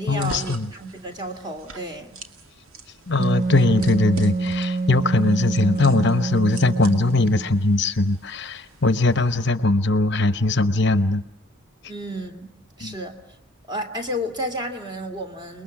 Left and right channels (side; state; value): both; normal; correlation 0.63